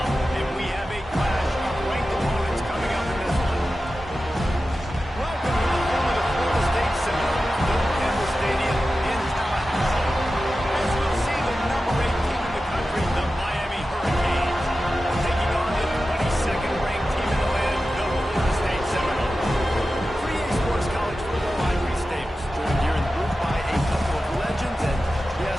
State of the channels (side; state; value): both; normal; correlation 0.93